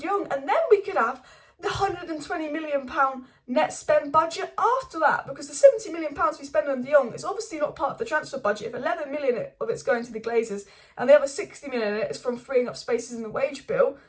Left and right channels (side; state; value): both; identical; correlation 1.00